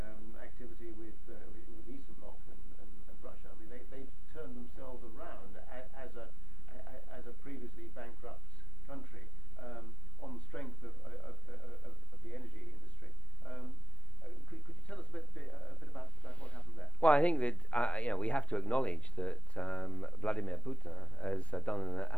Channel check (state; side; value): late; right; 0.063 ms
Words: activity with Eastern Bloc and Russia. I mean, they've turned themselves around as a previously bankrupt country on the strength of the energy industry. Could you tell us a bit about what happened there? Well, I think that we have to acknowledge that Vladimir Putin has done an